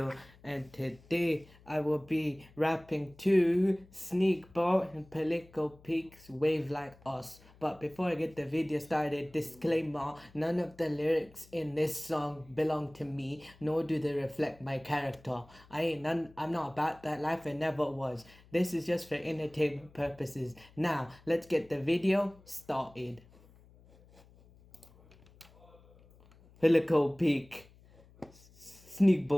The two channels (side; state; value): left; noise; hum, 26 dB below the sound